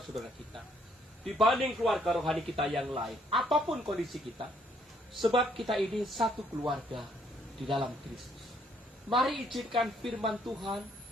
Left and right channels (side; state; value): both; normal; correlation 0.68